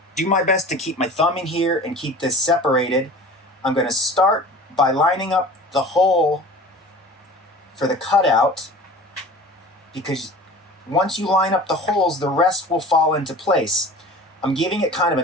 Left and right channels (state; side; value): normal; both; correlation 0.40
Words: do my best to keep my thumb in here and keep this separated. I'm going to start by lining up the hole for the cutout, because once you line up the holes, the rest will fall into place. I'm giving it kind of